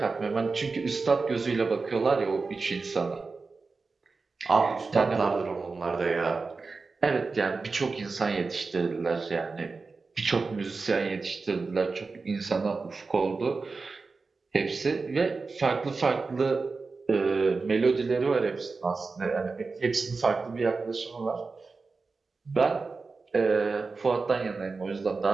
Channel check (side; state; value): left; quieter; 4.2 dB